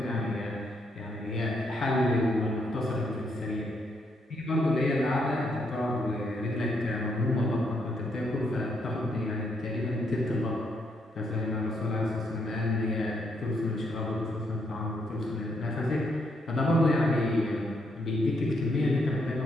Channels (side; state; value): both; normal; correlation 0.76